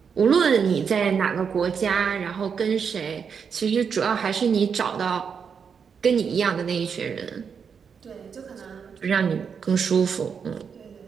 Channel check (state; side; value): quieter; left; 6.5 dB